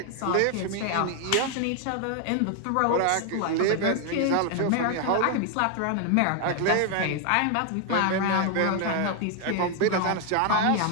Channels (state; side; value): different; both; correlation 0.00